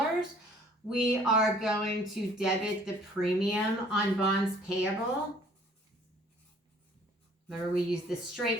We are going to debit the premium on bonds payable. Remember, we used the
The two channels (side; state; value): both; normal; correlation 0.56